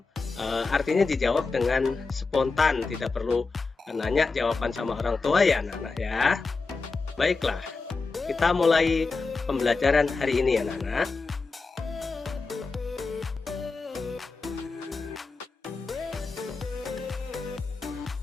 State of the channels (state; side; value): quieter; right; 4.1 dB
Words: artinya dijawab dengan spontan, tidak perlu nanya jawaban sama orang tua ya anak-anak ya. Baiklah, kita mulai pembelajaran hari ini anak-anak.